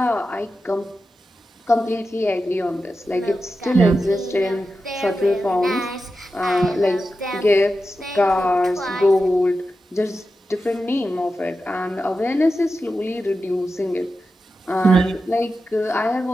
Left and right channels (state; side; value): normal; both; correlation 0.91